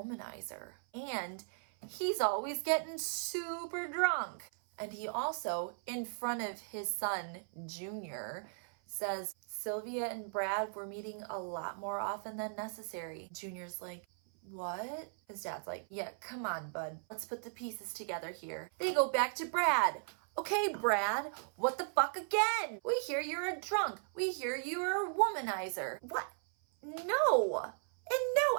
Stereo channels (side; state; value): left; silent; 53 dB below the other